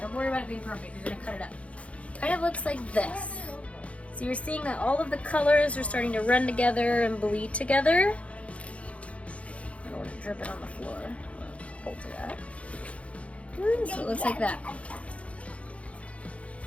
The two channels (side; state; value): right; late; 0.063 ms